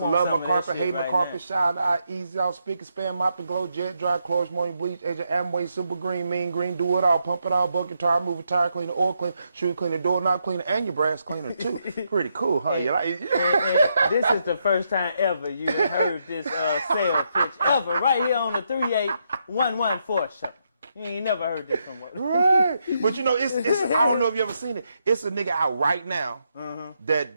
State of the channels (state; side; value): inverted; both; correlation -0.79